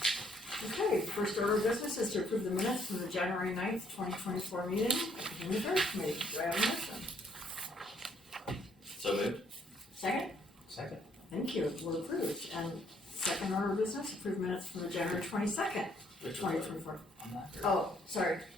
Okay, first order of business is to approve the minutes from the January 9th, 2024 meeting of the Human Affairs Committee. Do I have a motion? So moved. Second? Second. Thank you, we're approved. And second order of business, approve minutes from the January 22nd, Which one? 2024. I'm not sure. Oh, sorry.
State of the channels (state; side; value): normal; both; correlation 0.67